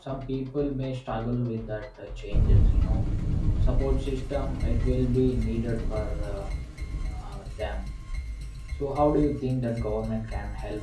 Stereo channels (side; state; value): both; identical; correlation 1.00